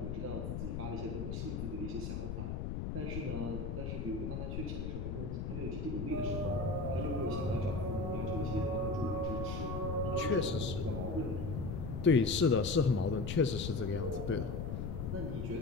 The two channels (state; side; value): noise; left; rumble, 3 dB below the sound